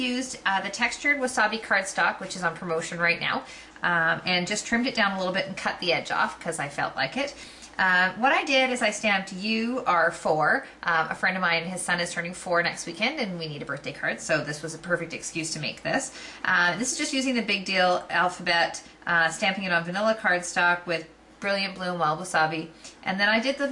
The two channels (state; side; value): identical; both; correlation 1.00